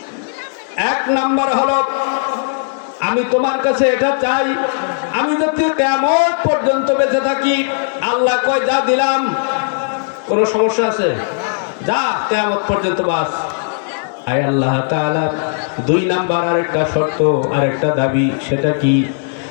এক নাম্বার হলো, আমি তোমার কাছে এটা চাই, আমি যদি কিয়ামত পর্যন্ত বেঁচে থাকি। আল্লাহ কয় যা দিলাম, কোনো সমস্যা আছে? যা, কিয়ামত পর্যন্ত বাস। আয় আল্লাহ তাআলা, দুই নাম্বার আরেকটা শর্ত, আরেকটা দাবি, সেটা কি?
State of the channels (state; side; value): silent; right; digital silence